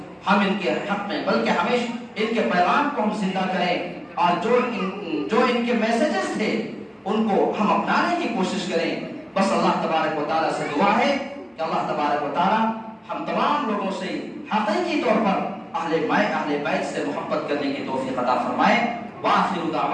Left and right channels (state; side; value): identical; both; correlation 1.00